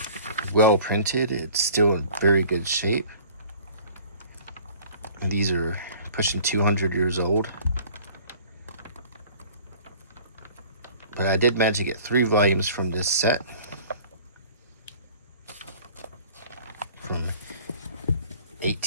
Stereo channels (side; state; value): both; inverted; correlation -0.49